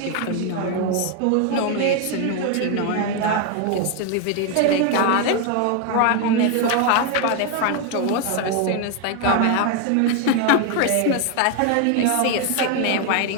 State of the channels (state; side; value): different; both; correlation 0.01